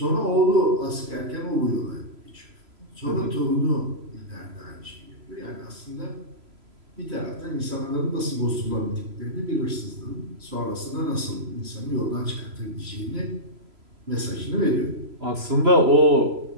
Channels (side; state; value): left; late; 3.0 ms